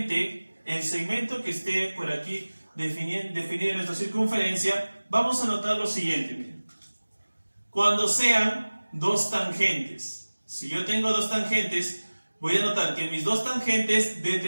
el segmento que esté por aquí definido en nuestra circunferencia, vamos a notar lo siguiente. Miren. Cuando sean dos tangentes, si yo tengo dos tangentes, voy a notar que mis dos tangentes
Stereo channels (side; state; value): both; inverted; correlation -1.00